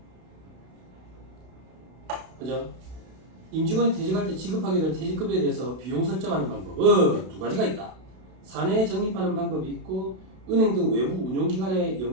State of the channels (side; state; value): left; late; 32 ms